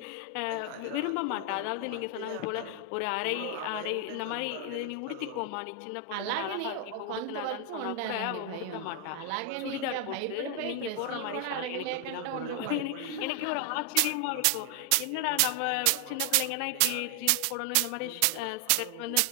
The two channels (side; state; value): both; different; correlation 0.00